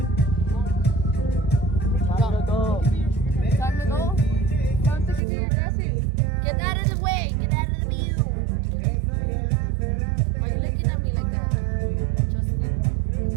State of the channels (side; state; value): left; drops out; at 5.2 s